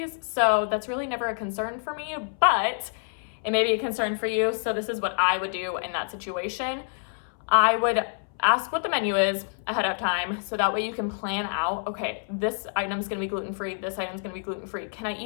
so that's really never a concern for me, but it may be a concern for you, so this is what I would do in that situation. I would ask what the menu is ahead of time, so that way you can plan out, okay, this item's gonna be gluten-free, this item's gonna be gluten-free. Can I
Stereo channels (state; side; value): silent; right; 60 dB below the other